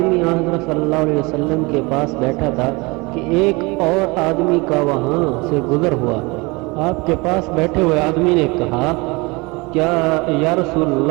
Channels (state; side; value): quieter; left; 25.9 dB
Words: حضرت صلی اللہ علیہ وسلم کے پاس بیٹھا تھا کہ ایک اور آدمی کا وہاں سے گزر ہوا۔ آپ کے پاس بیٹھے ہوئے آدمی نے کہا، کیا یا رسول